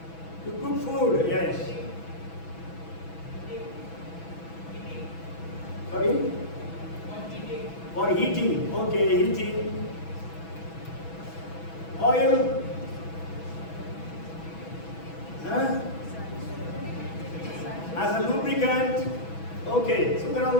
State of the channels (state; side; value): late; right; 6.1 ms